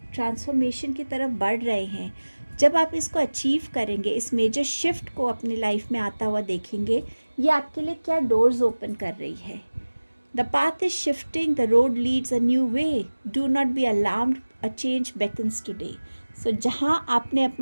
ट्रांसफॉर्मेशन की तरफ बढ़ रहे हैं, जब आप इसको अचीव करेंगे, इस मेजर शिफ्ट को अपनी लाइफ में आता हुआ देखेंगे, ये आपके लिए क्या डोर्स ओपन कर रही है। The path is shifting, the road leads a new way. Do not be alarmed, a change beckons today. So जहाँ आपने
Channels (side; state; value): both; inverted; correlation -1.00